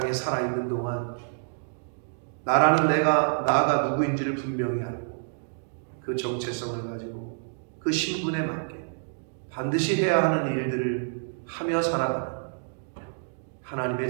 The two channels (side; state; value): left; silent; digital silence